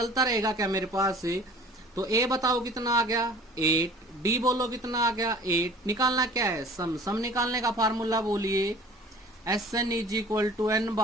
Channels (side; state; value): both; normal; correlation 0.46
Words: रहेगा क्या मेरे पास है? तो ए बताओ कितना आ गया? 8, डी बोलो कितना आ गया? 8। निकालना क्या है? सम निकालने का फार्मूला बोलिए। S n is equal to n